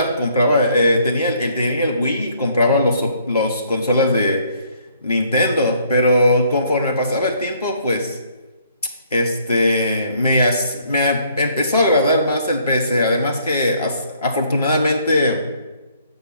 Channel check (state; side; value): inverted; both; correlation -0.64